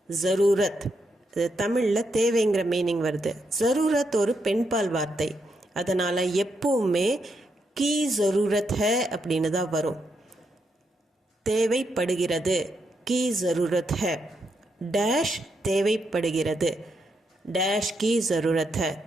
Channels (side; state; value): both; normal; correlation 0.81